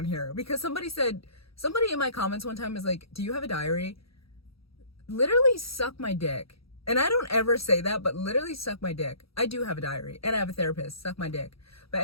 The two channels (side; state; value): right; late; 0.76 ms